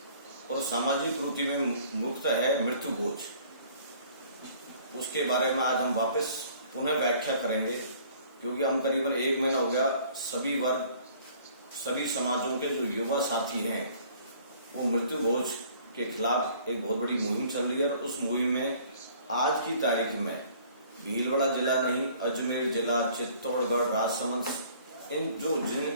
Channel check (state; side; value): inverted; both; correlation -0.55